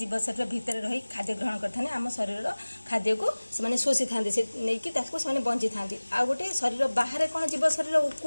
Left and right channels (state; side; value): inverted; both; correlation -1.00